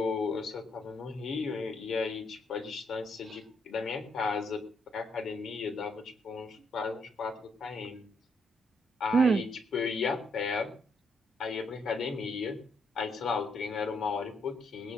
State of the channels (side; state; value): both; normal; correlation 0.74